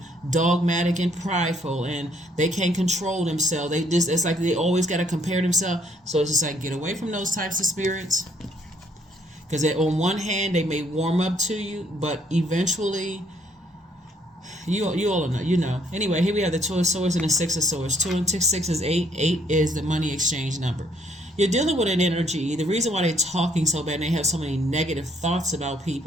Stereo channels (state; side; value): normal; both; correlation 0.66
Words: dogmatic and prideful and they can't control themselves, they just, it's like they always got to compare themselves. So it's just like, get away from those types of spirits, because on one hand they may warm up to you, but eventually you all know, anyway. Here we have the Two of Swords and the Six of Swords. 2 and 6 is 8. 8 is the money exchange number. You're dealing with an energy. The reason why they're talking so bad and they have so many negative thoughts about